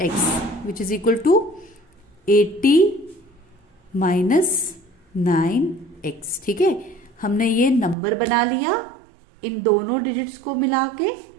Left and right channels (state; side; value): drops out; left; at 8.0 s